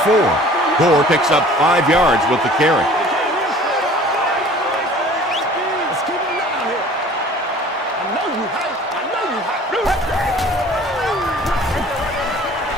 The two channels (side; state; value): both; normal; correlation 0.48